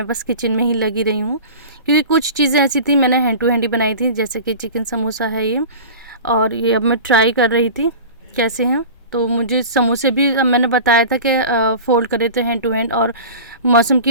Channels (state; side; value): inverted; both; correlation -0.35